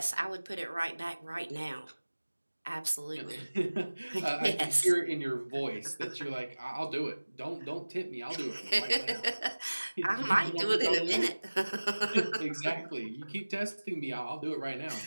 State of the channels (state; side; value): inverted; both; correlation -1.00